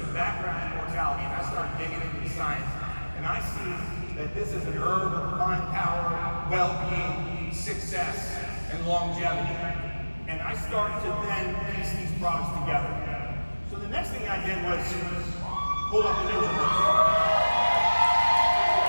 background in mortality, and I started digging into the science. And I see that this is an herb of divine power, well-being, success, and longevity. And I started to then piece these products together. So the next thing I did was pull up the NutriBurst.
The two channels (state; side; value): inverted; both; correlation -1.00